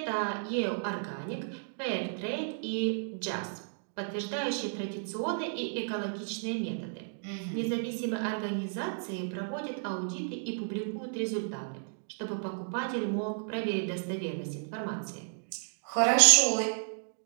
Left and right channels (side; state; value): left; silent; digital silence